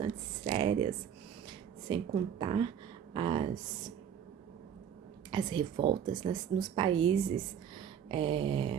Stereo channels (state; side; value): quieter; left; 8.7 dB